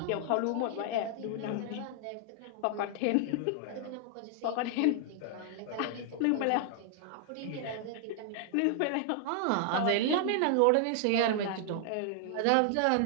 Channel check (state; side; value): different; both; correlation 0.00